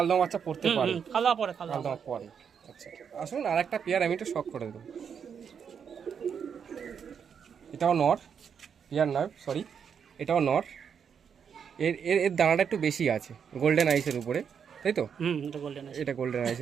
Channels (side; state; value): left; quieter; 7.2 dB